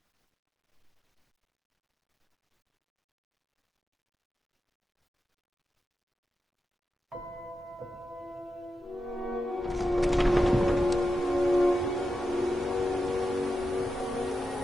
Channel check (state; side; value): normal; both; correlation 0.89